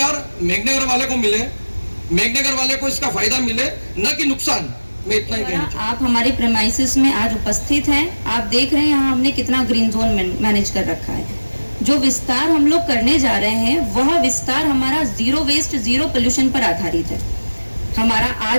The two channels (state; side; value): inverted; both; correlation -1.00